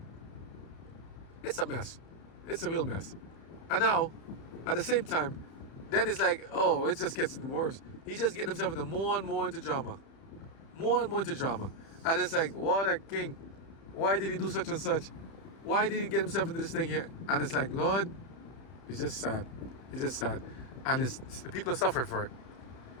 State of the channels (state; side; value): late; right; 31 ms